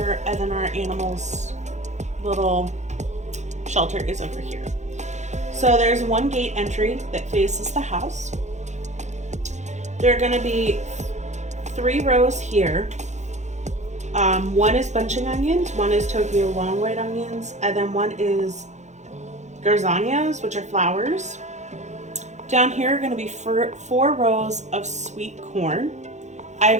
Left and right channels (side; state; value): left; late; 0.34 ms